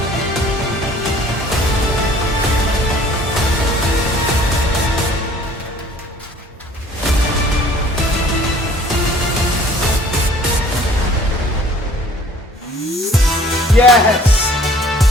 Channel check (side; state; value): both; normal; correlation 0.53